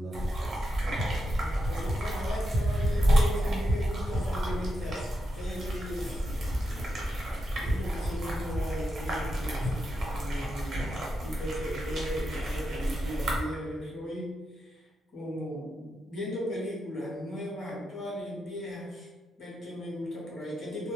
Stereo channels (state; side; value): normal; both; correlation 0.86